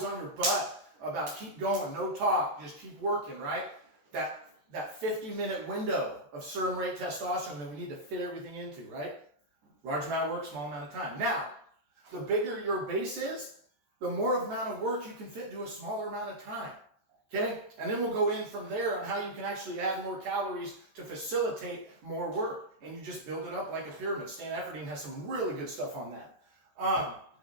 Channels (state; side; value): late; left; 14 ms